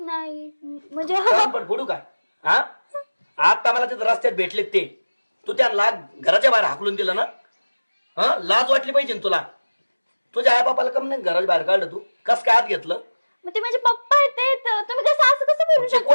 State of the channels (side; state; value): both; inverted; correlation -1.00